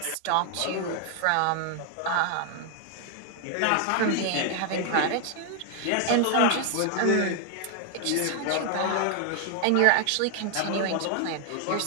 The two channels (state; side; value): different; both; correlation 0.00